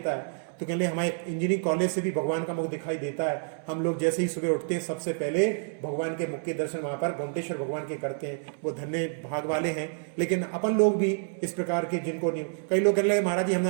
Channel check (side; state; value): left; silent; 59 dB below the other